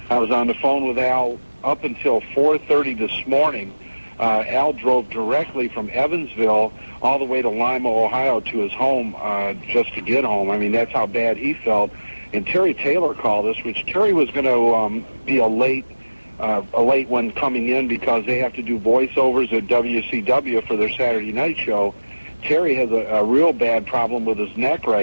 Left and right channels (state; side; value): inverted; both; correlation -1.00